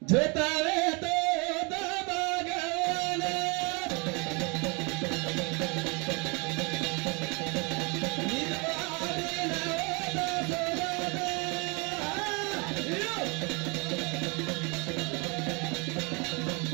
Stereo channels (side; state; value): left; quieter; 30.8 dB